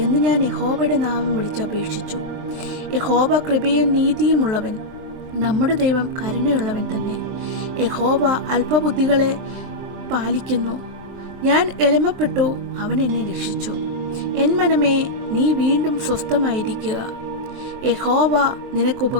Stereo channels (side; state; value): left; late; 23 ms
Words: എന്ന് ഞാൻ യഹോവയുടെ നാമം വിളിച്ചപേക്ഷിച്ചു. യഹോവ കൃപയും നീതിയുമുള്ളവൻ, നമ്മുടെ ദൈവം കരുണയുള്ളവൻ തന്നെ. യഹോവ അല്പബുദ്ധികളെ പാലിക്കുന്നു. ഞാൻ എളിമപ്പെട്ടു, അവൻ എന്നെ രക്ഷിച്ചു. എൻ മനമേ, നീ വീണ്ടും സ്വസ്ഥമായിരിക്കുക. യഹോവ നിനക്ക്